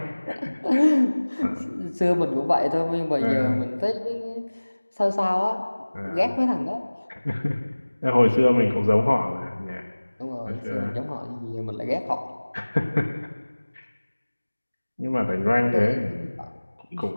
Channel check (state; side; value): inverted; both; correlation -1.00